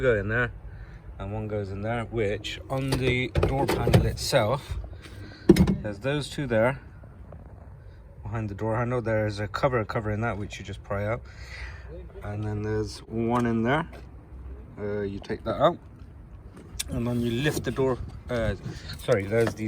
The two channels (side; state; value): both; identical; correlation 1.00